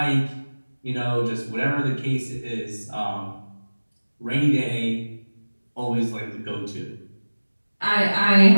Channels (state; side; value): inverted; both; correlation -1.00